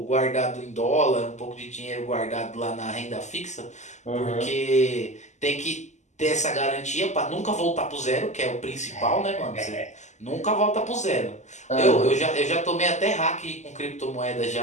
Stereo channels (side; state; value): right; late; 0.34 ms